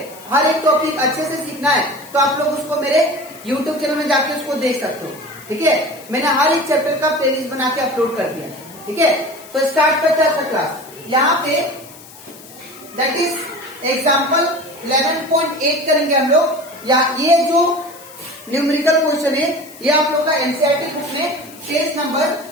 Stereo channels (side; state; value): left; noise; hiss, 20 dB below the sound